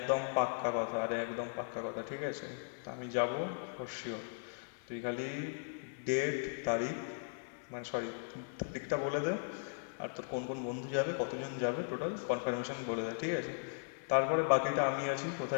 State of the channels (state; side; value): silent; right; 53 dB below the other